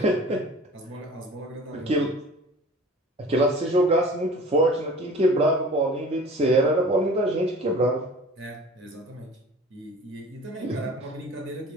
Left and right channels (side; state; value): both; normal; correlation 0.43